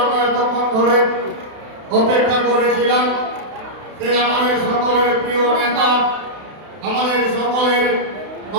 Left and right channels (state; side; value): late; left; 32 ms